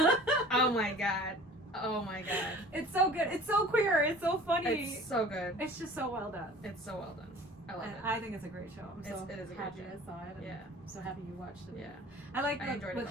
Oh my god. It's so good. It's so queer. It's so funny. It's so good. It's just so well done. It's so well done. I love it. I think it's a great show. I'm so it is a happy great show. I saw it. And I'm so happy you watched it. Yeah. I like I enjoyed with it.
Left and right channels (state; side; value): normal; both; correlation 0.44